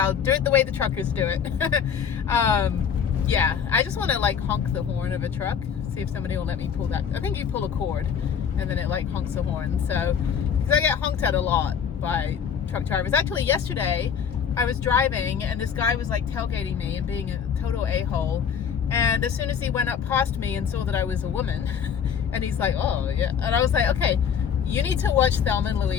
do it the way the truckers do it. Yeah, I just want to like honk the horn of a truck, see if somebody will let me pull that. I think you pull a cord and then it like honks the horn. So, because I get honked at a lot by truck drivers. Actually, yesterday I was driving and this guy was like tailgating me and being a total a-hole. And as soon as he went up past me and saw that I was a woman, and he's like, oh, yeah. And I was like, okay, you need to watch Thelma and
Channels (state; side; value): quieter; right; 7.5 dB